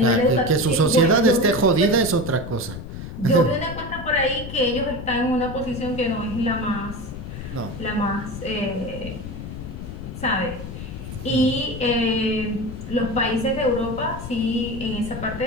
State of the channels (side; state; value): left; noise; rumble, 9 dB below the sound